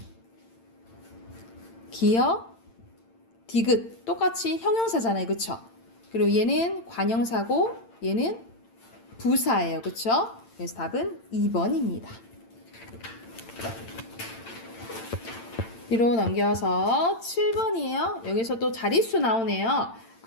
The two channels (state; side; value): late; right; 8.8 ms